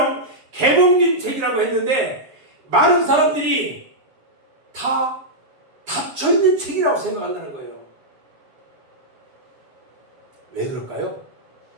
개봉된 책이라고 했는데 많은 사람들이 다 닫혀있는 책이라고 생각한다는 거예요. 왜 그럴까요?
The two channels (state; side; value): late; left; 7.1 ms